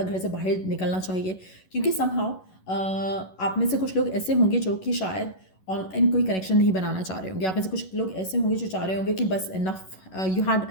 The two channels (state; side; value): late; right; 11 ms